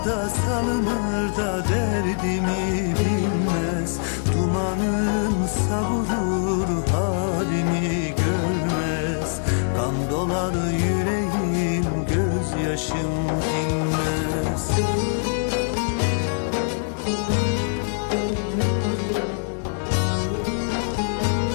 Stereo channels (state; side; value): silent; right; digital silence